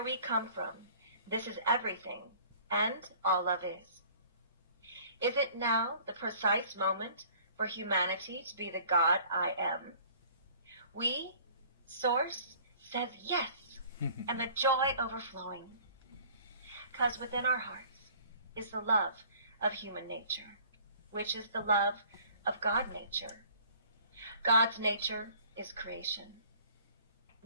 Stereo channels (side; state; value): both; inverted; correlation -0.52